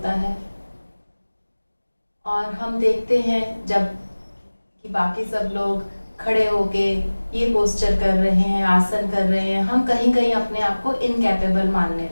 है। और हम देखते हैं जब कि बाकी सब लोग खड़े होके ये पोस्चर कर रहे हैं, आसन कर रहे हैं, हम कहीं कहीं अपने आप को इनकैपेबल मानने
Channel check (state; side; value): inverted; both; correlation -1.00